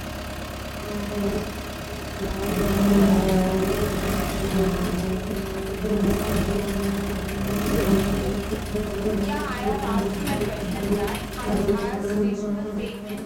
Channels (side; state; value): both; identical; correlation 1.00